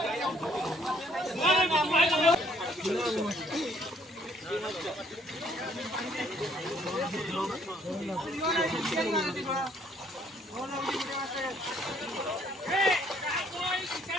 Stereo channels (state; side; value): normal; both; correlation 0.64